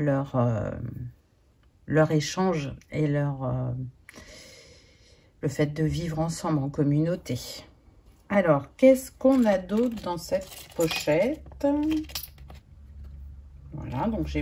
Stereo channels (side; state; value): both; identical; correlation 1.00